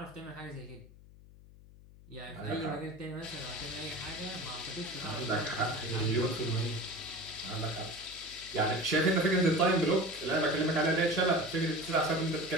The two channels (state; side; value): noise; left; hum, 21 dB below the sound